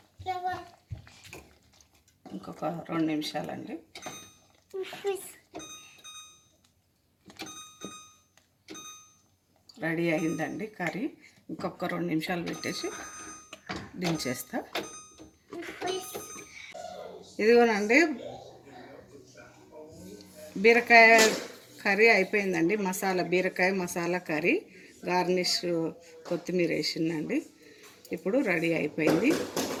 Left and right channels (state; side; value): identical; both; correlation 1.00